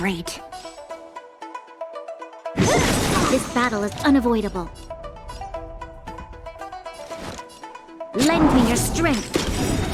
This battle is unavoidable. Lend me your strength.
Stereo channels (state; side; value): identical; both; correlation 1.00